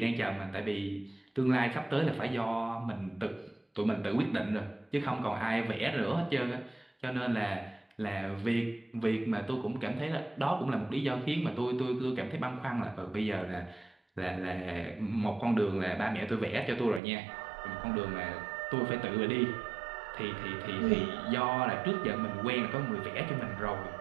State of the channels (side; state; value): left; drops out; at 17.0 s